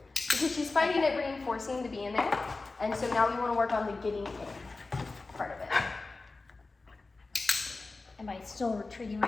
Because she's finding it reinforcing to be in there. And so now we want to work on the getting in part of it. Am I still retreating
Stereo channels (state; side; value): quieter; right; 3.6 dB